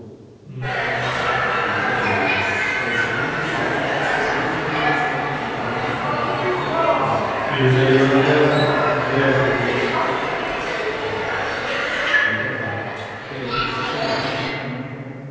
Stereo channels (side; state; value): both; identical; correlation 1.00